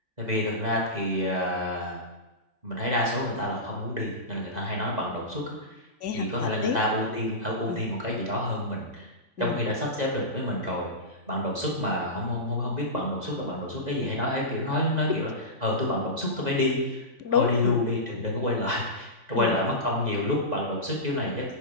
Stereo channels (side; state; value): left; late; 3.5 ms